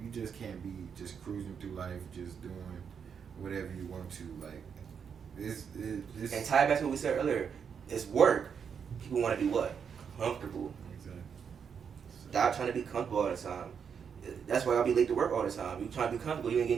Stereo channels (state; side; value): quieter; left; 7.0 dB